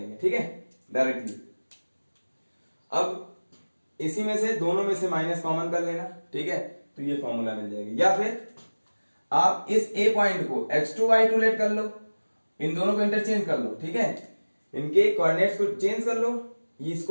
ठीक है, डायरेक्टली। अब इसी में से दोनों में से माइनस कॉमन कर लेना, ठीक है, तो ये फॉर्मूला मिल जाएगी। या फिर आप इस ए पॉइंट को x2 y2 लेट कर लो, इन दोनों को इंटरचेंज कर लो, ठीक है, इनके कोऑर्डिनेट्स को चेंज कर लो,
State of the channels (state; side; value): inverted; both; correlation -1.00